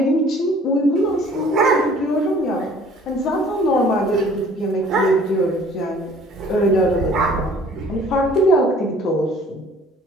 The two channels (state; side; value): normal; both; correlation 0.53